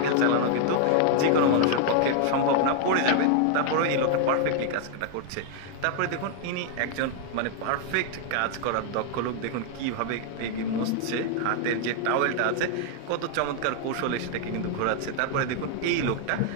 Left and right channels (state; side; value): different; both; correlation 0.00